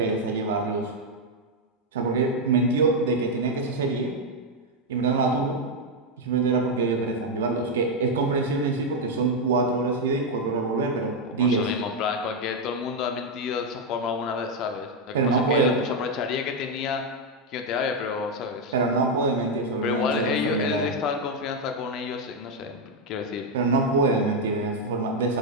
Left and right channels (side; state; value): both; normal; correlation 0.02